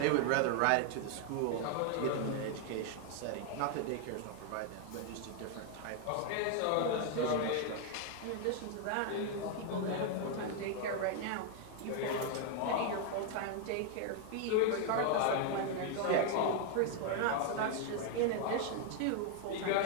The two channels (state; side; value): different; both; correlation 0.00